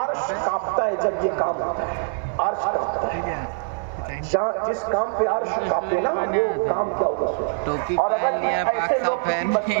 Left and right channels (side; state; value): left; silent; 56 dB below the other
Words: کانپتا ہے جب یہ کام ہوتا ہے. عرش کانپتا ہے. جس کام پہ عرش کانپے نا، وہ کام کیا ہوگا سوچ. اور اگر ایسے لوگ بستی